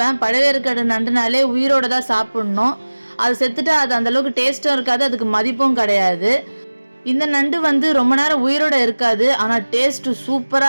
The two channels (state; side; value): inverted; both; correlation -1.00